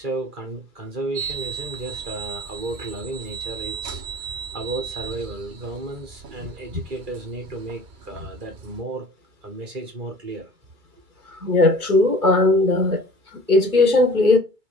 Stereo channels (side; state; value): left; late; 2.3 ms